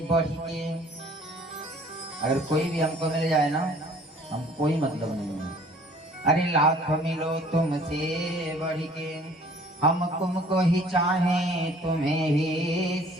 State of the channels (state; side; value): normal; both; correlation 0.53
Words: बढ़ के। अगर कोई भी हमको मिल जाए ना, हम कोई मतलब नहीं है। अरे लाख मिलो तुमसे बढ़ के, हम तुमको ही चाहें तुम्हें ही